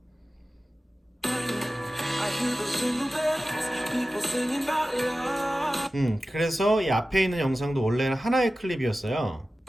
그래서 이 앞에 있는 영상도 원래는 하나의 클립이었어요.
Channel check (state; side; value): normal; both; correlation 0.95